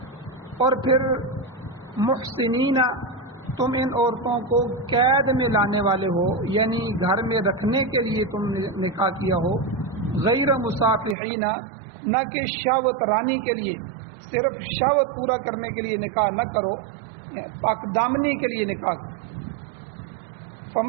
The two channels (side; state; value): left; drops out; at 11.2 s